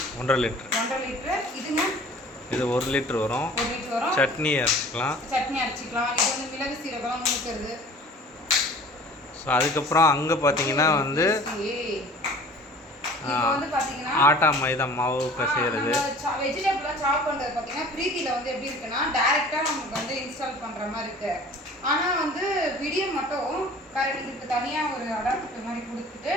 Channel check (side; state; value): both; normal; correlation 0.46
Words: 1.5 லிட்டர். 1.5 லிட்டர். இதுங்க இது 1 லிட்டர் வரும். 1 லிட்டர் வரும். சட்னி அரைச்சிக்கலாம். சட்னி அரைச்சிக்கலாம். இது வந்து மிளகு சீரகம் நுணுக்கிறது. ஸோ அதுக்கப்புறம் அங்கே பார்த்தீங்கன்னா வந்து ஆட்டா மைதா மாவு பிசைகிறது. வெஜிடபிள்லாம் சாப் பண்ணுறது பார்த்தீங்கன்னா பிரீத்தியில் வந்து எப்படி இருக்குன்னா டைரெக்டாக நமக்கு வந்து இன்ஸ்டால் பண்ணுற மாதிரி இருக்கு. ஆனால் வந்து வீடியோ மட்டும் கரெக்ட் இதுக்கு தனியாக ஒரு அடாப்டர் மாதிரி கொடுத்துட்டு